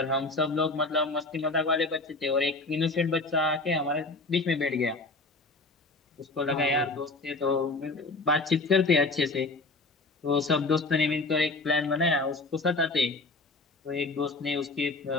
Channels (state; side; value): quieter; right; 3.3 dB